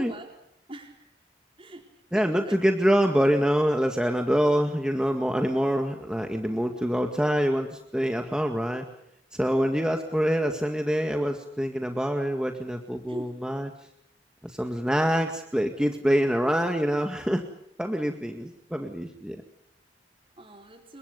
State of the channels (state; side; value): normal; both; correlation 0.94